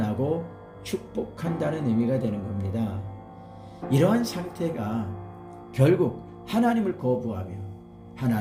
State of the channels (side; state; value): both; identical; correlation 1.00